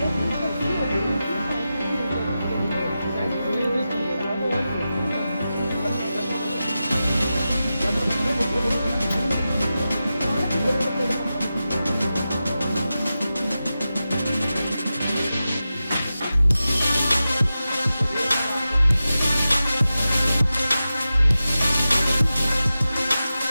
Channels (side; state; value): both; inverted; correlation -0.92